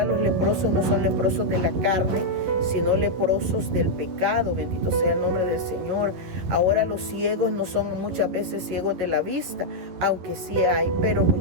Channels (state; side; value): late; left; 11 ms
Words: los leprosos no son leprosos de la carne, sino leprosos del pecado. Bendito sea el nombre del Señor. Ahora los ciegos no son muchas veces ciegos de la vista, aunque sí hay, pero